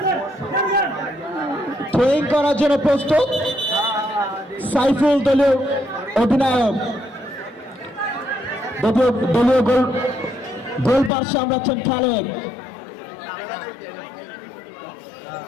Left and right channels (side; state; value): right; drops out; at 11.1 s